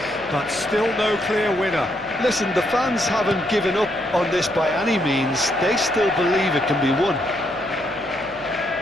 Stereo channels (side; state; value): left; noise; hum, 23 dB below the sound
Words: but still no clear winner. Listen, the fans haven't given up on this by any means. They still believe it can be won.